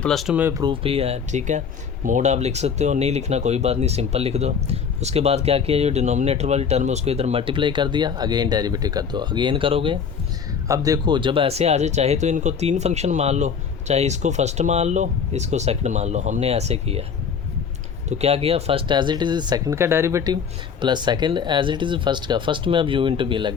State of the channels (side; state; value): right; quieter; 6.7 dB